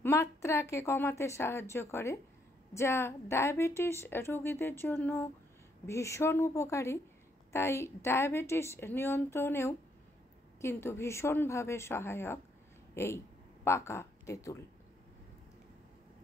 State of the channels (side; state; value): both; normal; correlation 0.73